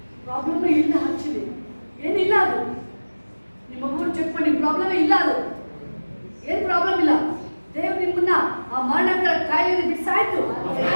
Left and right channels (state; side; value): inverted; both; correlation -1.00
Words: ಪ್ರಾಬ್ಲಮ್ ಇಲ್ಲ ಆಕ್ಚುಲಿ ಏನಿಲ್ಲ ಅದು ನಿಮ್ಮ ಮಗು ಚೆಕ್ ಮಾಡಿ ಪ್ರಾಬ್ಲಮ್ ಇಲ್ಲ ಅದು ಏನು ಪ್ರಾಬ್ಲಮ್ ಇಲ್ಲ ದೇವ್ರು ನಿಮ್ಮನ್ನ ಆ ಮರಣಗಳ ಕಾಯಿಲೆ ಬಿಡಿಸಾಯ್ತು